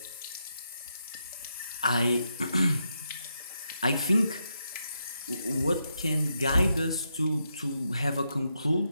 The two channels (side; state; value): both; inverted; correlation -0.83